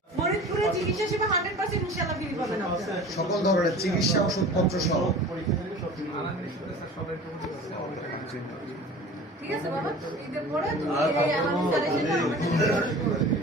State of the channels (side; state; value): both; normal; correlation 0.40